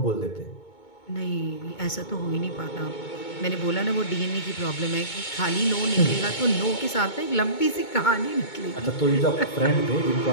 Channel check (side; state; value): right; late; 2.2 ms